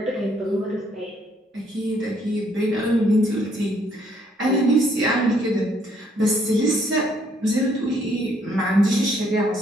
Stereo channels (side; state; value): both; normal; correlation 0.67